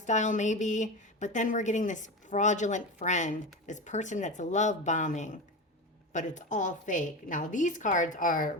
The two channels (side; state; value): both; normal; correlation 0.23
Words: maybe. But then we're getting this fraudulent friend, this person that's love bombing, but it's all fake. Now these cards are